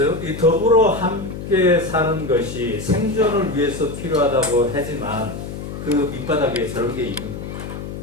이 더불어 함께 사는 것이 생존을 위해서 필요하다고 하지만 그 밑바닥에 저런 게 있는 거예요.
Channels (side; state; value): left; noise; hum, 8 dB below the sound